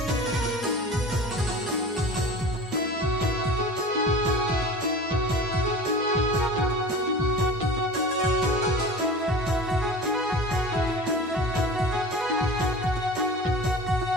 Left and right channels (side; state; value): both; normal; correlation 0.37